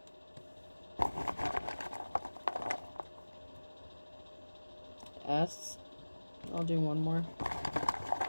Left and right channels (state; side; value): inverted; both; correlation -1.00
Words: S. I'll do one more.